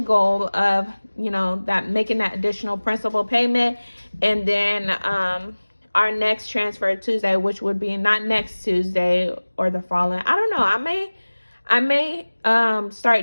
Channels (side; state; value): both; inverted; correlation -1.00